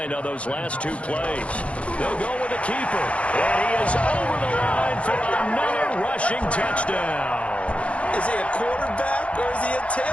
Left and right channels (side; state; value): right; late; 0.062 ms